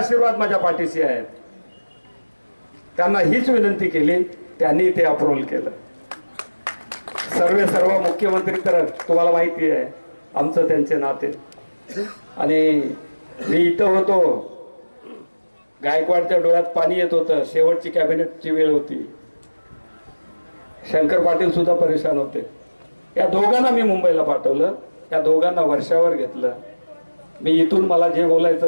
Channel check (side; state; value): both; inverted; correlation -1.00